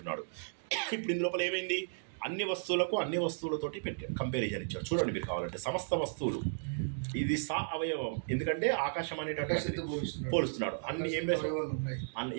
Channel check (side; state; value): left; silent; digital silence